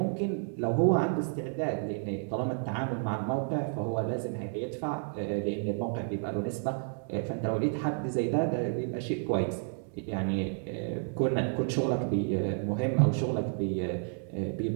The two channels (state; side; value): silent; left; 57 dB below the other